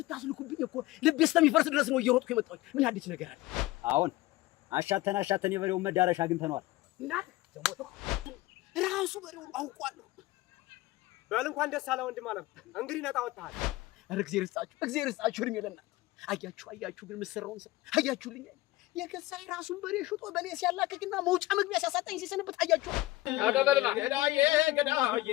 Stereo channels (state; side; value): quieter; right; 18.3 dB